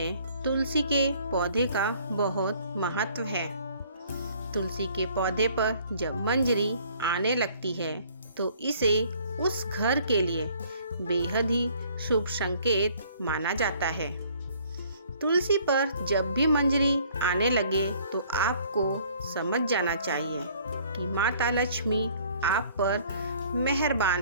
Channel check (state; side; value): inverted; both; correlation -0.58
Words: तुलसी के पौधे का बहुत महत्व है। तुलसी के पौधे पर जब मंजरी आने लगती है तो इसे उस घर के लिए बेहद ही शुभ संकेत माना जाता है। तुलसी पर जब भी मंजरी आने लगे तो आपको समझ जाना चाहिए कि माता लक्ष्मी आप पर